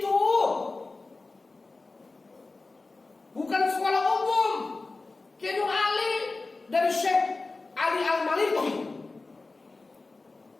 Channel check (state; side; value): quieter; right; 3.6 dB